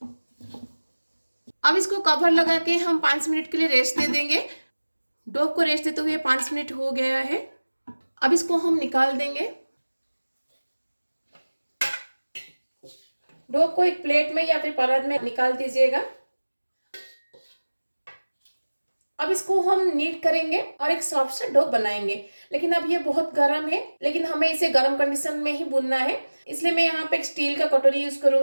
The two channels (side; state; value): both; inverted; correlation -1.00